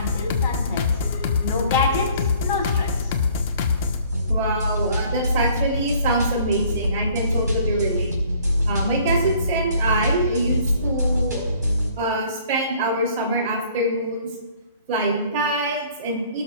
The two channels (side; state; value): both; inverted; correlation -0.56